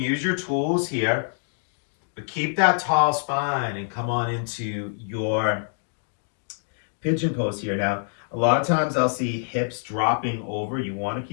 your tools here, but keep that tall spine and come on into your pigeon pose here. Now, a lot of times I'll see hips dropping over. You want to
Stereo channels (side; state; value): right; silent; digital silence